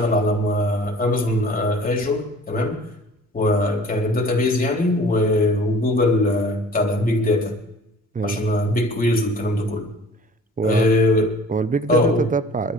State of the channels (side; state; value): both; normal; correlation 0.47